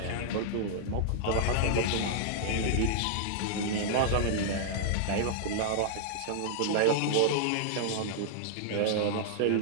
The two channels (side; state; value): both; different; correlation -0.01